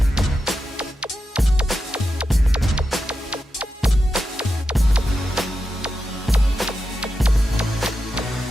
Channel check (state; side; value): normal; both; correlation 0.89